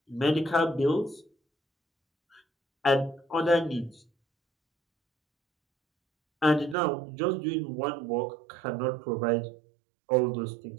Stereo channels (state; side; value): drops out; left; at 6.8 s